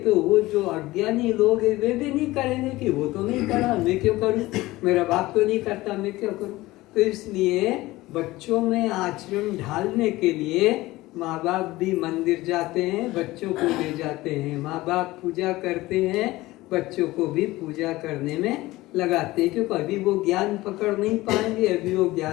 वो जो अज्ञानी लोग हैं वे भी नहीं करेंगे कि वो तो नहीं करा, मैं क्यों करूं, मेरा बाप तो नहीं करता, मैं क्यों करूं। तो इसलिए बच्चों में आचरण ढालने के लिए माँ बाप भी मंदिर जाते हैं, बच्चों को ले जाते हैं, माँ बाप पूजा करते हैं, बच्चों को भी पूजा करने में लगाते हैं, क्योंकि अभी वो ज्ञान पकड़ नहीं पाएंगे, अभी वो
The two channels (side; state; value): right; quieter; 18.6 dB